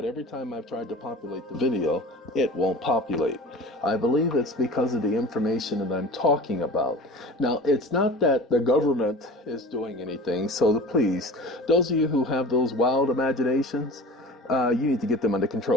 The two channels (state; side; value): normal; both; correlation 0.38